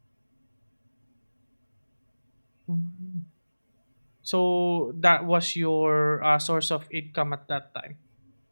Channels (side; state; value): both; inverted; correlation -1.00